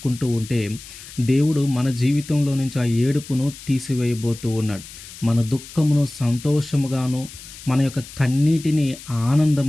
ఉంటే దేవుడు మన జీవితంలో నుంచి ఆ ఏడుపును తీసివేయబోతూ ఉన్నాడు. మన దుఃఖమును సంతోషముగాను, మన యొక్క కన్నీటిని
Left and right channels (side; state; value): left; noise; hiss, 16 dB below the sound